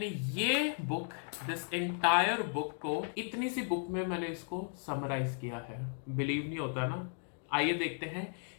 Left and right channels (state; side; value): silent; right; 54 dB below the other